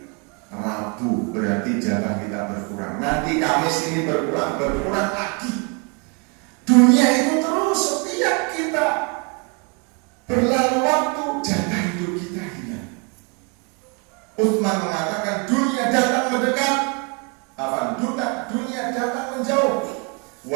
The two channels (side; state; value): left; quieter; 34.1 dB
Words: Rabu, berarti jatah kita berkurang. Nanti Kamis ini berkurang lagi. Dunia itu terus setiap kita berlalu waktu jatah hidup kita hilang. Utsman mengatakan dunia datang mendekat, dunia datang menjauh.